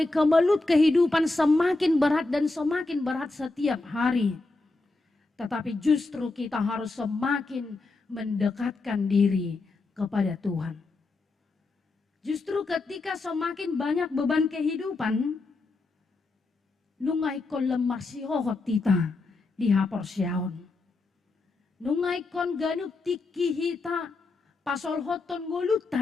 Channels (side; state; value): right; quieter; 3.3 dB